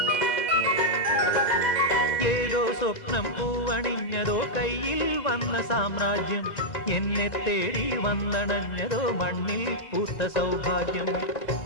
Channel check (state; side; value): late; right; 2.0 ms